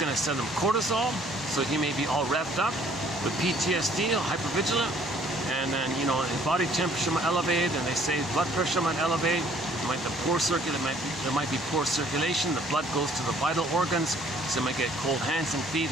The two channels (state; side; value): normal; both; correlation 0.59